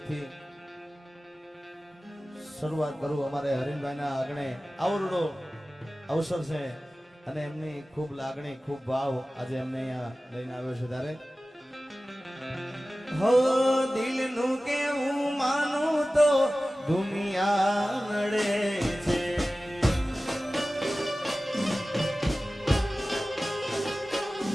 શરૂઆત કરું। અમારે હરીનભાઈના આંગણે આવરડો અવસર છે અને એમની ખૂબ લાગણી ખૂબ ભાવ આજે એમને અહીંયા લઈને આવ્યો છે ત્યારે હો દિલનું કેવું માનું તો દુનિયા નડે છે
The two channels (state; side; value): normal; both; correlation 0.96